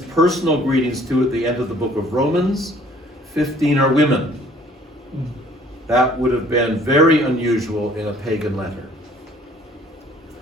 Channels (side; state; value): both; normal; correlation 0.57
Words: greetings to at the end of the book of Romans, 15 are women. That would have been very unusual in a pagan letter.